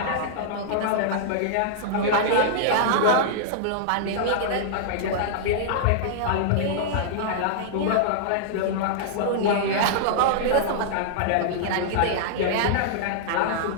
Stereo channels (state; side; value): different; both; correlation -0.01